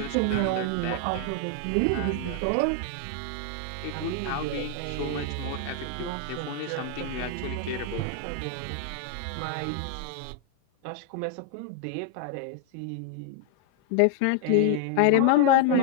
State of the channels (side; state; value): both; different; correlation 0.00